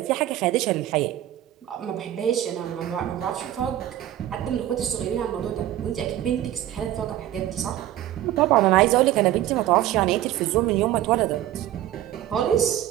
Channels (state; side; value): quieter; left; 13.2 dB